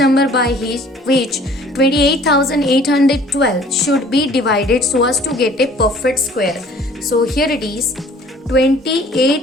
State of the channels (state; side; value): normal; both; correlation 0.53